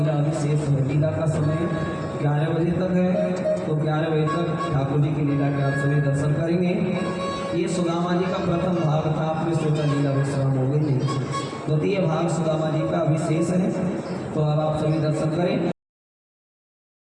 अभी शेष है। लीला का समय 11 बजे तक है, तो 11 बजे तक ठाकुर जी की लीला के आप सभी दर्शन करेंगे। ये सुदामा जी का प्रथम भाग था, आपने सोचा लीला विश्राम हो गई। द्वितीय भाग सुदामा जी का अभी शेष है, तो अब आप सभी दर्शन करें।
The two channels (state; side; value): identical; both; correlation 1.00